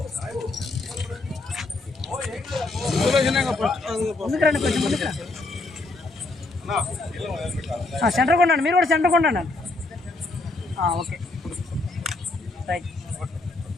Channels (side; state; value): right; quieter; 3.2 dB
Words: ముందుకు రండి, కొంచెం ముందుకు రండి. సెంటర్ కొన్నాను, మీరు కూడా సెంటర్ కొన్నాను. ఓకే రైట్